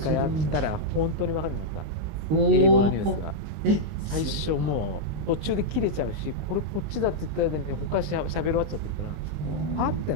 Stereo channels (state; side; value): late; left; 19 ms